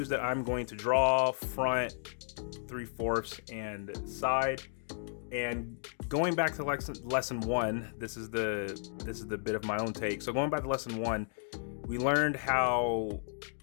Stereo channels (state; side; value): silent; right; digital silence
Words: that I'm going to draw: front, 3/4, and side. And going back to lesson 1, this is the bit of my own take. So going back to lesson 1, we learned how